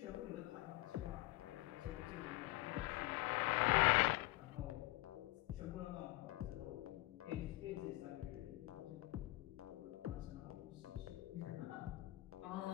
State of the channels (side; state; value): right; quieter; 19.2 dB